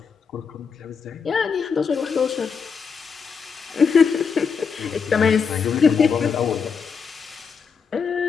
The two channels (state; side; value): quieter; right; 5.9 dB